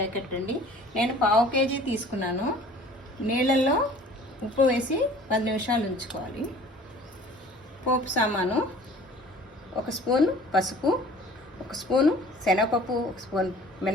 అండి. నేను 1/2 కేజీ తీసుకున్నాను. నీళ్ళల్లో ఉప్పు వేసి 10 నిమిషాలు ఉంచుకోవాలి. పోపు సామాను: 1 స్పూన్ పసుపు, 1 స్పూను శనగపప్పు, 1 స్పూన్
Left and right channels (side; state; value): both; normal; correlation 0.48